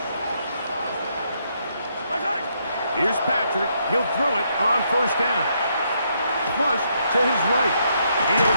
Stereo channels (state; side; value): inverted; both; correlation -0.75